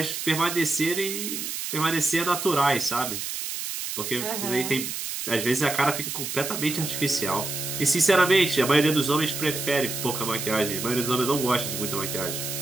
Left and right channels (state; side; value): noise; right; hiss, 5 dB below the sound